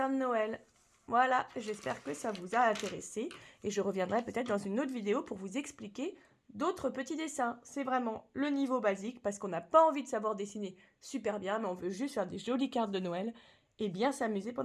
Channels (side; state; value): both; identical; correlation 1.00